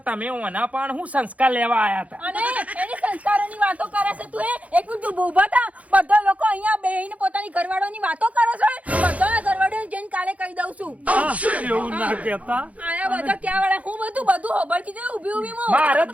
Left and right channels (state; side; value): late; left; 0.068 ms